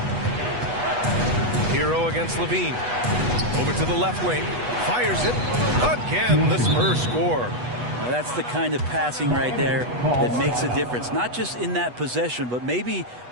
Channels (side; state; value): left; late; 8.2 ms